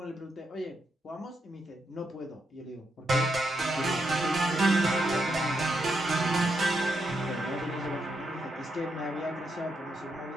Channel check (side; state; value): both; normal; correlation 0.81